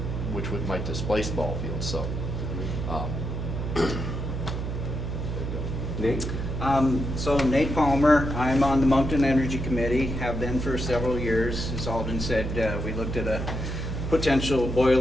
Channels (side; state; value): right; noise; hum, 4 dB below the sound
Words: might displace ball fields, so. Nate? So Nate Palmer, I'm on the Moncton Energy Committee, have been for several years. As Alden said, we looked at a potential